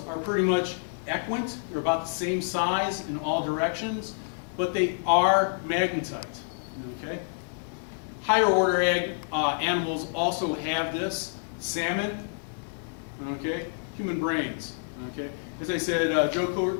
are pretty much equant. They're about the same size in all directions, but they are magnetite. Okay? Higher order animals also have this. Salmon, okay? Human brains, okay? As I said, Joe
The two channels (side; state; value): right; silent; digital silence